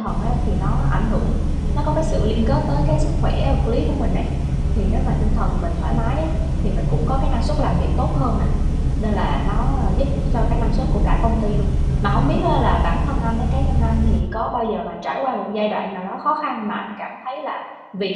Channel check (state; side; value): identical; both; correlation 1.00